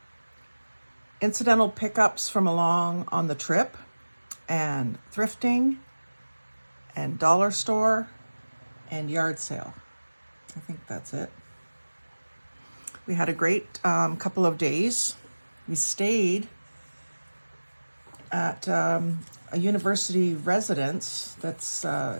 incidental pickups from along on the trip and thrifting and dollar store and yard sale. I think that's it. We had a great couple of days. We stayed at a university residence that's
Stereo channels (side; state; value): both; inverted; correlation -1.00